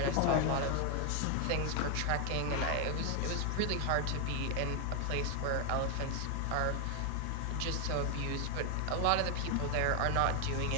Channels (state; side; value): different; both; correlation 0.00